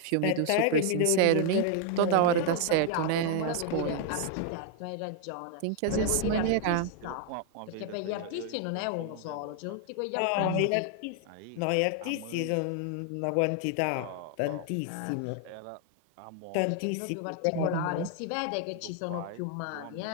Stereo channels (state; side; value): different; both; correlation 0.00